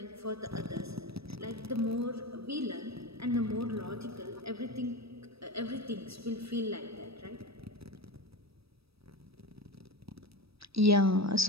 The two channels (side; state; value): left; late; 0.77 ms